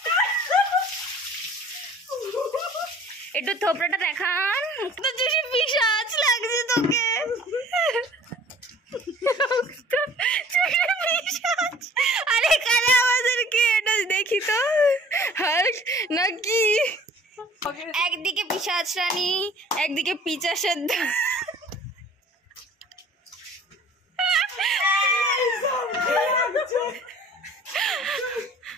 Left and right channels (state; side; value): normal; both; correlation 0.50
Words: একটু থোপড়াটা দেখান, মুখটা বেশি পিশাচ লাগছে তোকে। আরে কালে আমাদেরকে এটা দেখি তো, হাল্ক নাকি একদিকে পিশাচ রানী, একদিকে পিচাসের